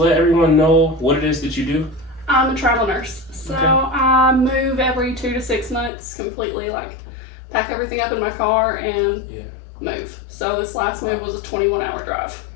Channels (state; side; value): drops out; right; at 5.9 s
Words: everyone know what it is that you do? I'm a travel nurse, so Okay. I move every 2 to 6 months, completely pack everything up in my car and move. So this last move was a 21-hour drive.